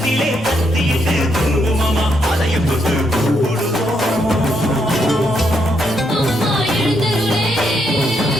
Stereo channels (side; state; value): both; normal; correlation 0.77